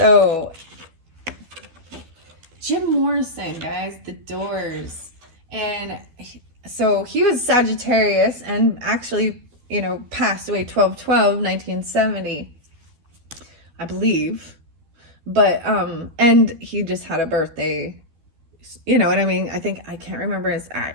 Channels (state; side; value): late; left; 12 ms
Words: Jim Morrison, guys, The Doors. And so he was Sagittarius and actually, you know, passed away 12/12/1970, I believe. But, and he just had a birthday, you know what I mean? I think, I can't remember his